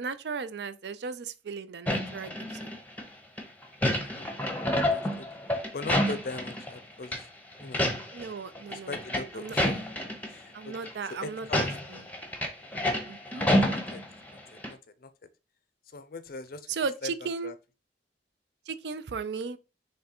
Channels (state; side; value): normal; both; correlation 0.48